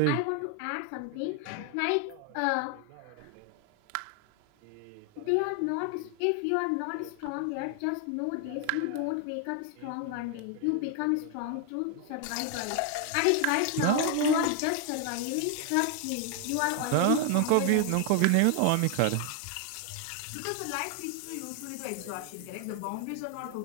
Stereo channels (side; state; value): both; different; correlation 0.01